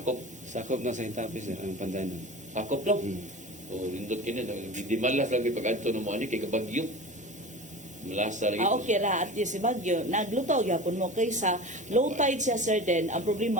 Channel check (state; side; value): normal; both; correlation 0.34